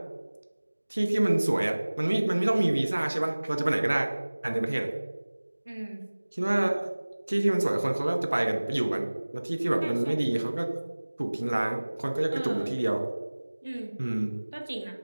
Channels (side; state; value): both; inverted; correlation -1.00